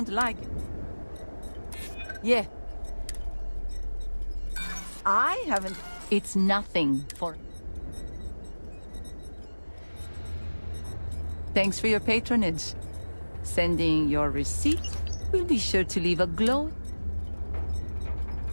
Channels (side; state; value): both; inverted; correlation -1.00